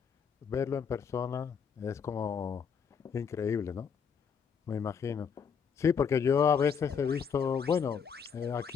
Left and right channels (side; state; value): right; quieter; 6.7 dB